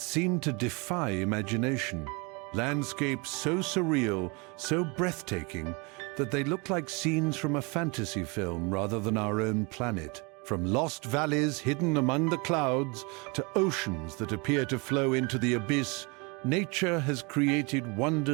seem to defy imagination. Landscapes so surreal, so breathtaking, that they look like scenes from a fantasy film rather than our own planet. From lost valleys hidden among the clouds to oceans that appear to flow into the abyss, nature has created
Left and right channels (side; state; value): left; quieter; 29.4 dB